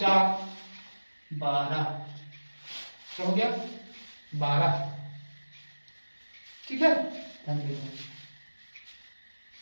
12, क्या हो गया? 12। ठीक है, ध्यान देना।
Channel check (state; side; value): inverted; both; correlation -1.00